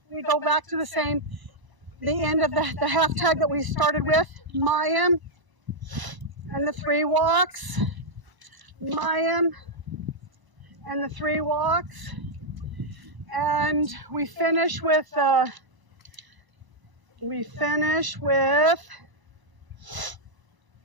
we go back to the end of the half tag that we started with, Mayim, and the 3 walks, Mayim, and the 3 walks, and we finish with the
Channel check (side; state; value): left; late; 1.0 ms